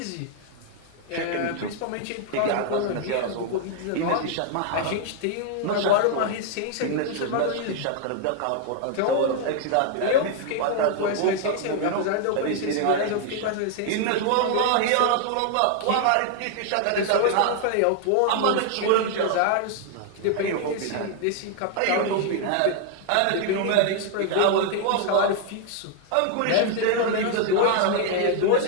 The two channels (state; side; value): different; both; correlation 0.00